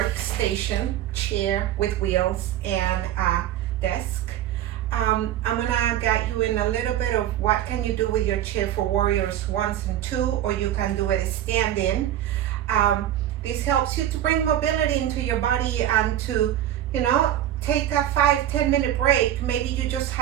chair with wheels, and a desk. I'm gonna guide you in a little bit of what can you do with your chair for warriors 1 and 2, or you can do it standing. This helps you to bring mobility into your body and to, take a 5-10 minute break. Maybe you just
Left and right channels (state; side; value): quieter; left; 11.9 dB